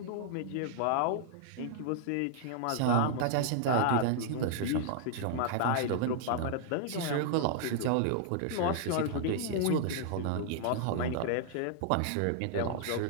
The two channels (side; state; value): both; different; correlation 0.00